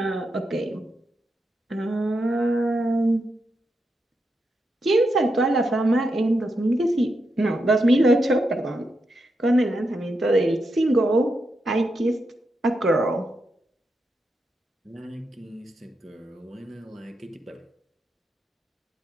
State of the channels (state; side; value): normal; both; correlation 0.85